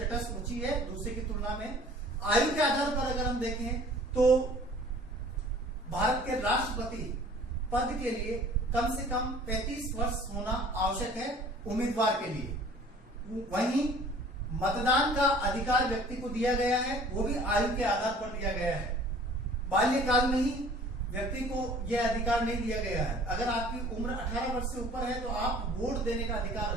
ऊंची है दूसरे की तुलना में। आयु के आधार पर अगर हम देखें तो भारत के राष्ट्रपति पद के लिए कम से कम 35 वर्ष होना आवश्यक है उम्मीदवार के लिए। वहीं मतदान का अधिकार व्यक्ति को दिया गया है, वो भी आयु के आधार पर दिया गया है। बाल्यकाल में ही व्यक्ति को यह अधिकार नहीं दिया गया है। अगर आपकी उम्र 18 वर्ष से ऊपर है तो आप वोट देने का अधिकार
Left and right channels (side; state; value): both; normal; correlation 0.50